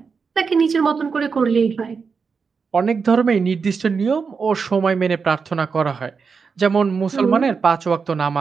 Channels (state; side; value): quieter; left; 5.4 dB